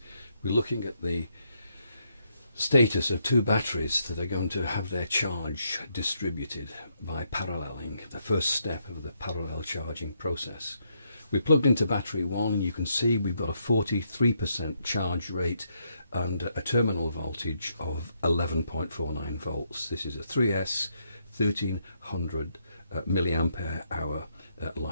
we're looking at the status of two batteries that are going to have their charge distributed by paralleling, the first step of the parallel charging process. We plugged into battery 1 and you can see we've got a 43% charge rate and a terminal voltage of 11.49 volts. This is a 3S 1300 milliampere hour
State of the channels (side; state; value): both; inverted; correlation -0.77